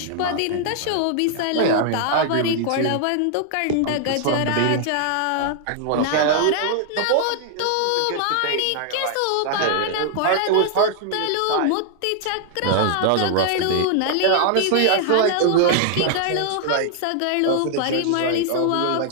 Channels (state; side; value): different; both; correlation 0.00